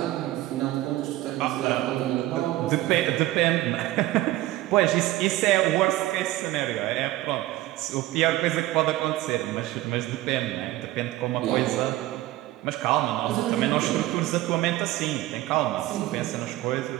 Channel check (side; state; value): left; quieter; 16.5 dB